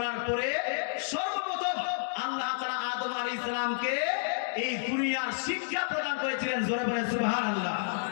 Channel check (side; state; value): right; silent; digital silence